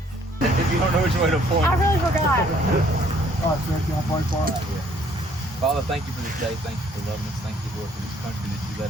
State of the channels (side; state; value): both; normal; correlation 0.62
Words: If you don't know which way to point. I really forgot. All right, sir, y'all pray for us. Father, thank you for this day. Thank you for loving us. Thank you, Lord, for this country that you